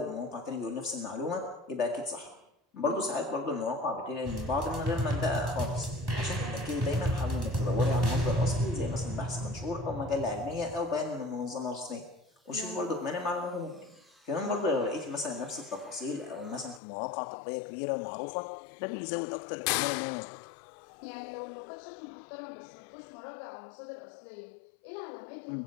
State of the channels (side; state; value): right; drops out; at 16.8 s